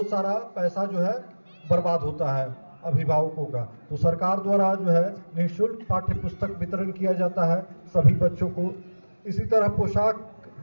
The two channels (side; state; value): both; inverted; correlation -1.00